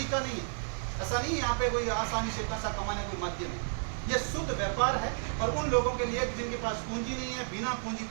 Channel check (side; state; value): left; silent; digital silence